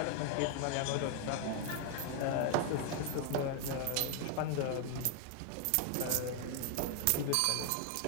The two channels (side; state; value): both; different; correlation 0.00